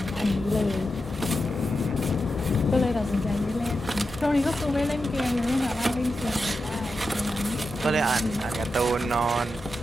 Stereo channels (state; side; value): normal; both; correlation 0.89